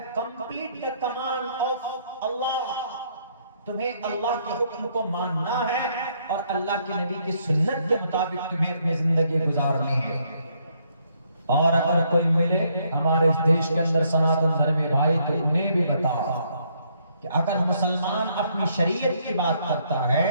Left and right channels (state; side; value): inverted; both; correlation -0.70